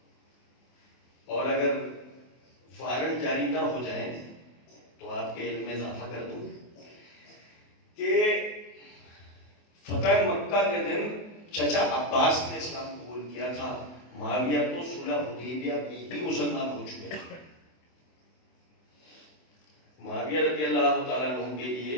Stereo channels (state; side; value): late; right; 24 ms